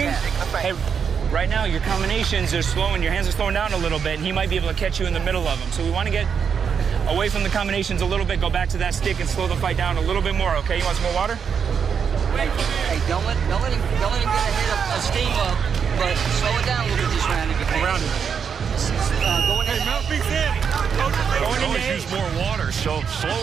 Hey, right now your combinations are slowing. Your hands are slowing down a little bit, and he might be able to catch you in the middle of them. So we want to get away from the combinations a little bit, go back to that stick, and slow the fight down a little bit more. Okay? You want some more water? Hey, don't let him get a steam up, but slow it down a little bit this round if you can. Around him. Always use more water, so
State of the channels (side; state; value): left; quieter; 6.8 dB